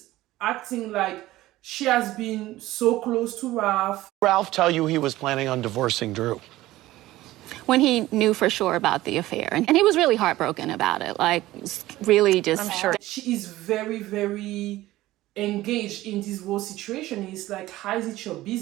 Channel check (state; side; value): quieter; left; 16.6 dB